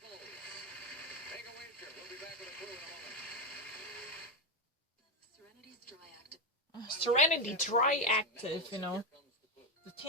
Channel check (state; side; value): normal; both; correlation 0.07